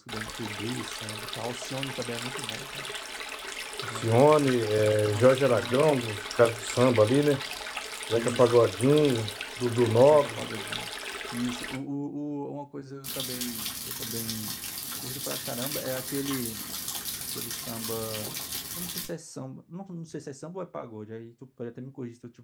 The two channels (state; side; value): identical; both; correlation 1.00